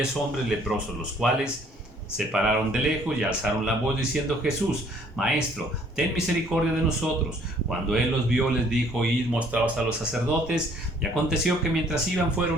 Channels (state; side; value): normal; both; correlation 0.60